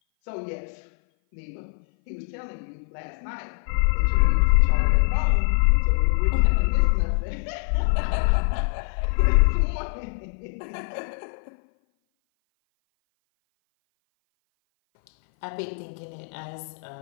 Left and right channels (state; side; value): silent; right; 58 dB below the other